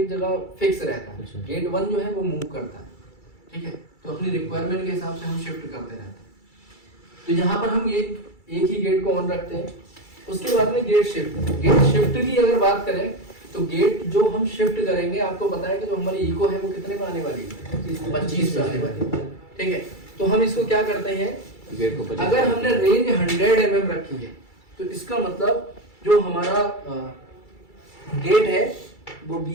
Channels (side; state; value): right; late; 2.3 ms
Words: जगह फिक्स रहता है। अच्छा। गेट 1 जो है वो मूव करता है। ठीक है, तो अपनी रिक्वायरमेंट के हिसाब से हम शिफ्ट करते रहते हैं। तो यहाँ पर हम एक ही गेट को ऑन रखते हैं। उसके बाद में गेट शिफ्ट की अगर बात करें तो गेट जो हम शिफ्ट करेंगे, आपको पता है कि जो हमारी इको है वो कितने पे आने वाली है? 25 पे आने वाली है। ठीक है, तो हम इसको क्या करते हैं? गेट को अगर हमने रेंज 100 mm रखी है तो इसका मतलब जो हमारा गेट है वो